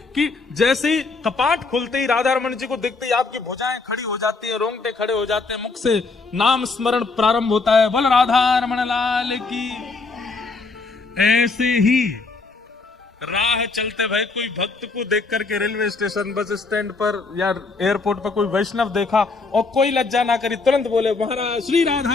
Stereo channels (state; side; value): quieter; right; 4.0 dB